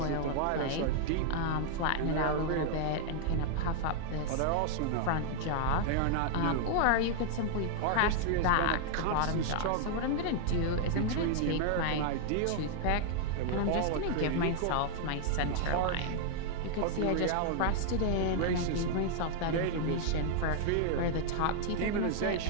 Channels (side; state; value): both; different; correlation 0.00